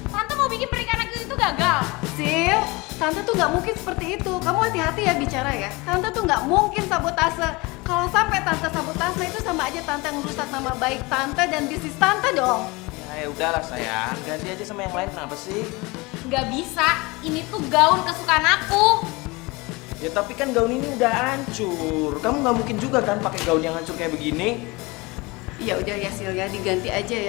Tante mau bikin pernikahan aku itu gagal. Sil, tante tuh nggak mungkin seperti itu. Kamu hati-hati ya bicara ya. Tante tuh nggak mungkin sabotase. Kalau sampai tante sabotase itu sama aja tante ngerusak nama baik tante dan bisnis tante dong. Ya udahlah sayang, ganti aja sama yang lain kenapa sih? Nggak bisa, ini tuh gaun kesukaan aku. Ya tapi kan gaun ini udah hancur. Kamu nggak mungkin juga kan pakai gaun yang hancur kayak begini. Ya udah ya Sil ya, diganti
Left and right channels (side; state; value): right; quieter; 24.6 dB